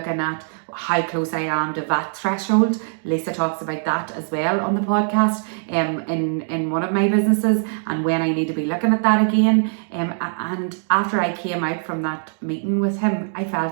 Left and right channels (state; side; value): silent; left; digital silence